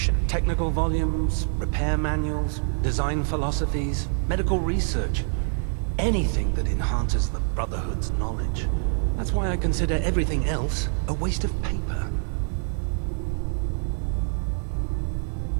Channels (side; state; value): left; silent; 58 dB below the other